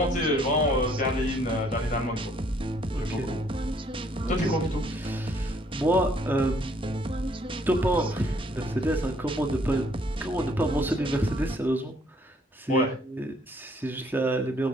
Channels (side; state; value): both; normal; correlation 0.64